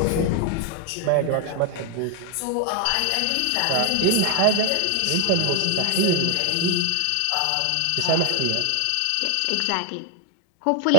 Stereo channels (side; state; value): both; different; correlation 0.01